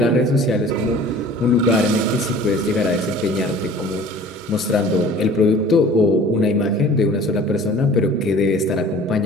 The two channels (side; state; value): both; normal; correlation 0.46